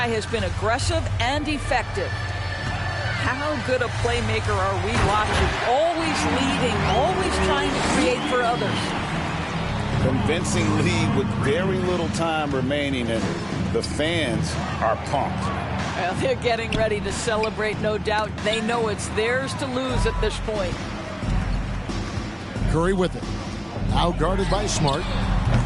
has been aggressive and effective. How good a playmaker are we watching? Always leading, always trying to create for others. Convincing lead with very little time remaining, and the fans are pumped. Well, they're getting ready to celebrate, no doubt. They know it's theirs to lose at this point. Curry with it. Now guarded by Smart.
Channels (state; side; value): identical; both; correlation 1.00